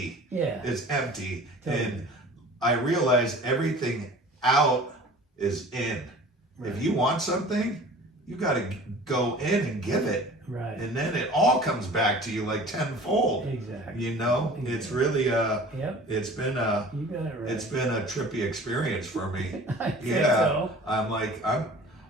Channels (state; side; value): normal; both; correlation 0.44